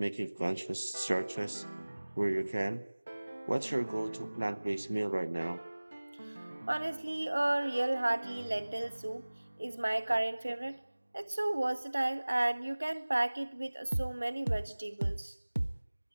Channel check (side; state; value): both; inverted; correlation -1.00